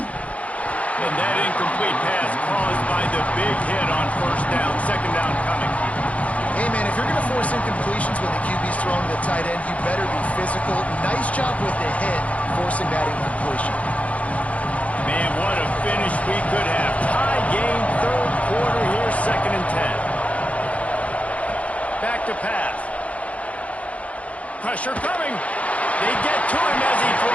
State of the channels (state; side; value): late; right; 0.065 ms